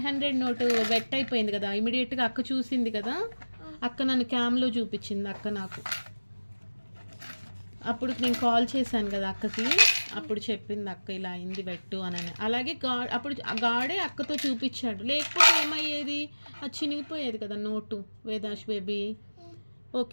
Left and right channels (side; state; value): both; inverted; correlation -1.00